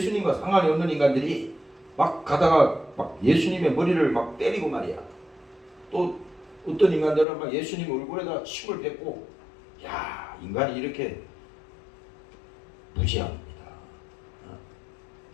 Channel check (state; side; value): drops out; right; at 7.2 s